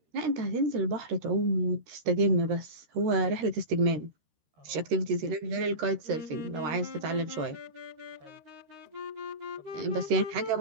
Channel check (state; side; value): late; left; 13 ms